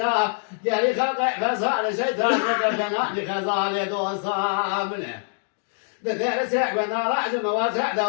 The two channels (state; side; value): silent; right; 62 dB below the other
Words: قال لي خاطئ فسال الشيطان وقدنا لخزال دوصامنه بدأ سعب نراج مواسع